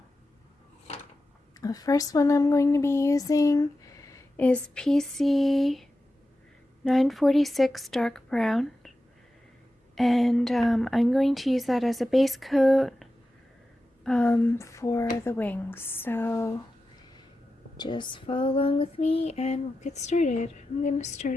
the first one I'm going to be using is PC 946 dark brown, and I'm going to use that as a base coat for the wings. So just follow along with me and we'll get started. I'm going to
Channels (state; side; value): normal; both; correlation 0.92